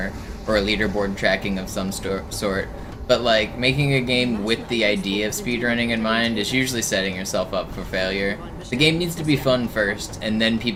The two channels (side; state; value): both; identical; correlation 1.00